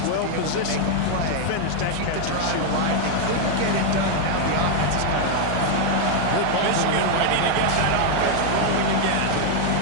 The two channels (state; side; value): different; both; correlation 0.00